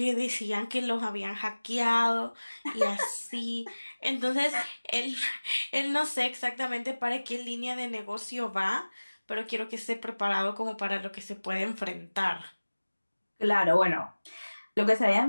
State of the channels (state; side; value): inverted; both; correlation -1.00